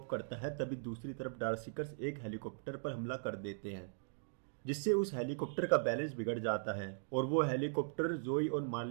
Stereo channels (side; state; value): left; silent; digital silence